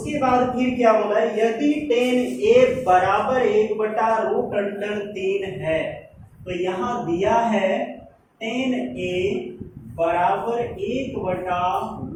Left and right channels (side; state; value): both; identical; correlation 1.00